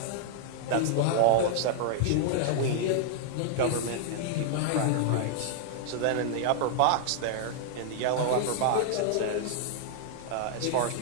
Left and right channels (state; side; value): different; both; correlation -0.01